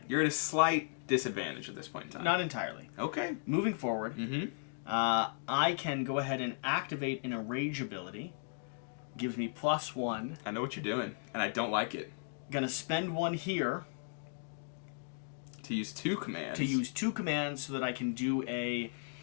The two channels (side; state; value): right; silent; digital silence